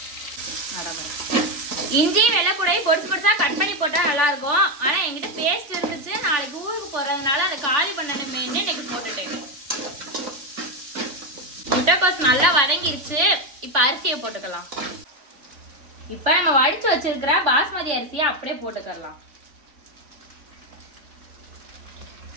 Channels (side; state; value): left; late; 3.5 ms